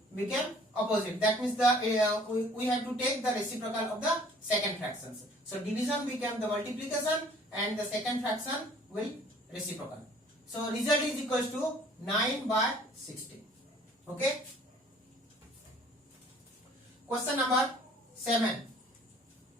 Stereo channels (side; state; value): both; normal; correlation 0.54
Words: become opposite. That means we have to take the reciprocal of the second fractions. So division become the multiplication and the second fraction will reciprocal. So result is equals to 9 by 16. Okay. Question number 7.